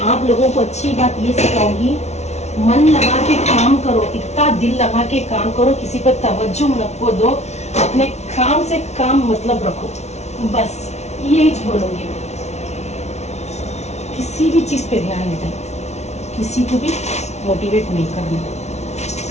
आप लोगों को अच्छी बात ये सिखाऊंगी, मन लगा के काम करो, इतना दिल लगा के काम करो, किसी पर तवज्जो नको दो, अपने काम से काम मतलब रखो, बस यही बोलूंगी मैं। किसी भी चीज पे ध्यान नहीं देना, किसी को भी मोटिवेट नहीं करना,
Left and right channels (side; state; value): right; late; 0.32 ms